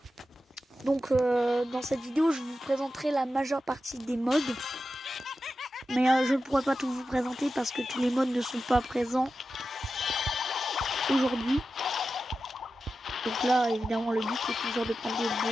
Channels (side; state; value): both; normal; correlation 0.92